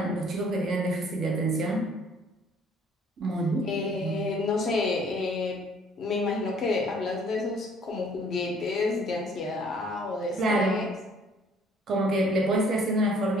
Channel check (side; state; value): both; normal; correlation 0.58